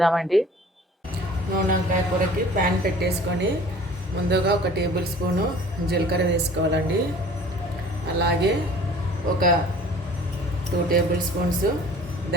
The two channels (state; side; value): normal; both; correlation 0.48